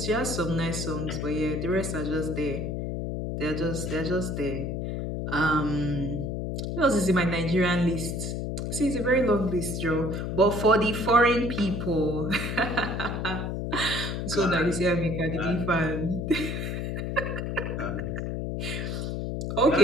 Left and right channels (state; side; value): noise; left; hum, 3 dB below the sound